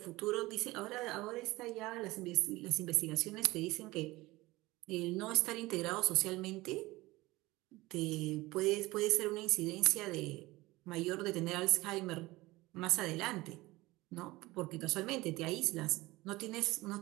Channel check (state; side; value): quieter; left; 19.9 dB